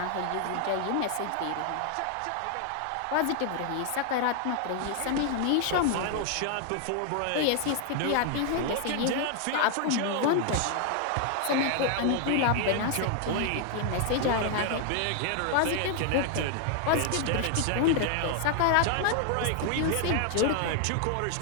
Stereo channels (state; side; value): different; both; correlation 0.00